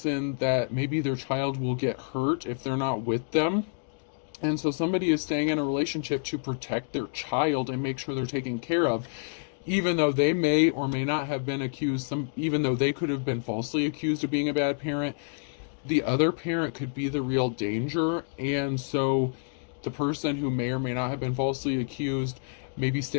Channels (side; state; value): right; silent; digital silence